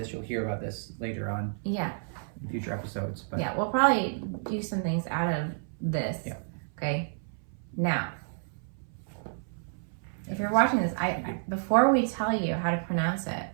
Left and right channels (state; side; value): silent; left; 58 dB below the other